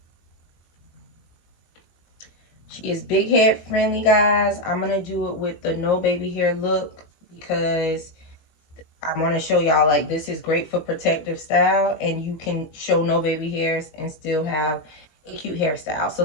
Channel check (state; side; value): late; right; 19 ms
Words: She is big head friendly, guys. I'm gonna do it with the no baby hair look because I want to show y'all, like, this is great for protective style, and you can show no baby hairs and still have a cute hairstyle. So